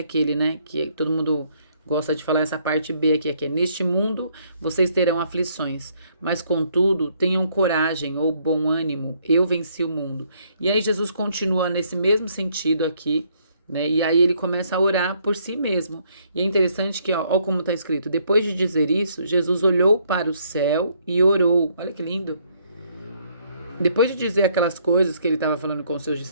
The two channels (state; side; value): inverted; both; correlation -0.68